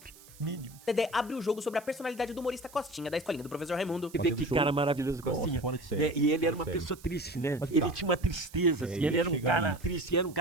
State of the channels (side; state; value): right; noise; hiss, 22 dB below the sound